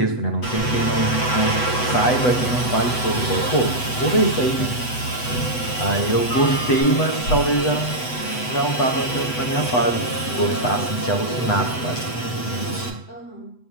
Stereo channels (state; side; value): late; right; 8.0 ms